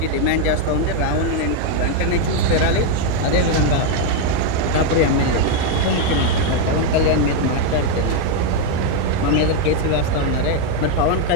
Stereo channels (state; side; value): different; both; correlation 0.01